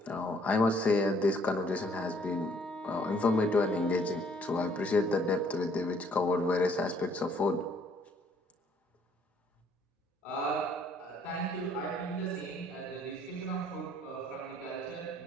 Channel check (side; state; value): both; normal; correlation 0.63